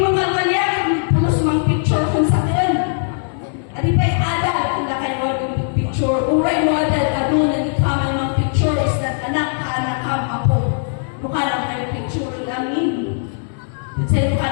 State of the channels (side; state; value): right; silent; digital silence